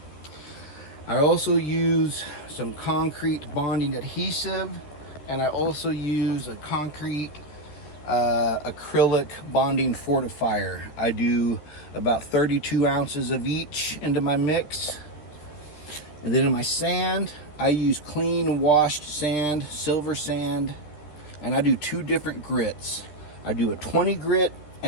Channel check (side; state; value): right; late; 13 ms